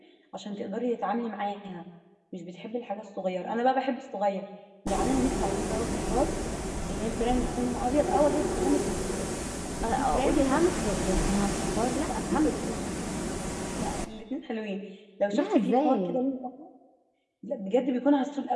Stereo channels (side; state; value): both; identical; correlation 1.00